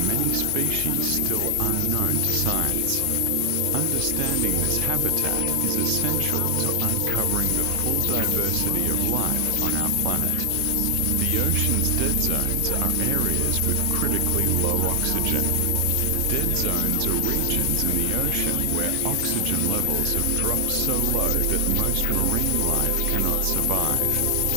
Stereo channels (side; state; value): both; different; correlation 0.00